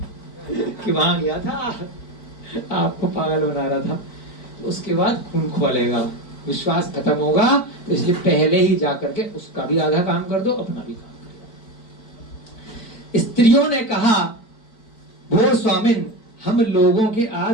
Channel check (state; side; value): late; right; 4.5 ms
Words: कि वहां गया था, आपको पागल बना रहा था। तो उसके बाद खून खोलेगा, विश्वास खत्म होगा, तो इसलिए पहले ही जाकर के उसका भी आधा काम कर दो, अपना भी काम कर दो। स्त्रियों ने कहा, भो स्वामिन हम लोगों के